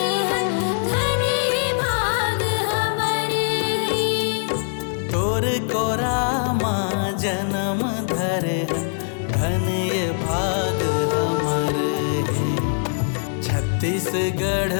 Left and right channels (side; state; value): right; silent; 64 dB below the other